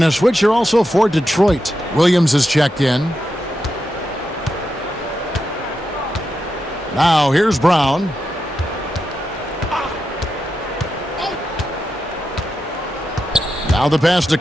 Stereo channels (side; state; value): both; normal; correlation 0.87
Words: a switcher also for Detroit. Williams is checked in. Now here's Brown. Now the pass to